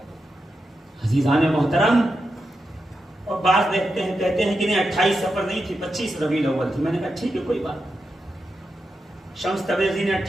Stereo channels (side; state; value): both; normal; correlation 0.88